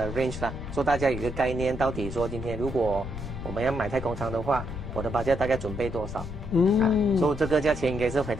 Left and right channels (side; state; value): left; noise; rumble, 8 dB below the sound